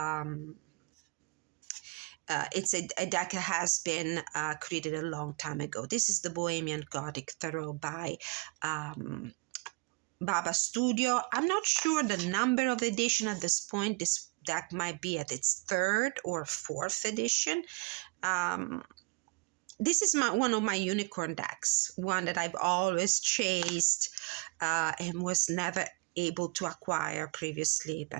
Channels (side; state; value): left; quieter; 28.2 dB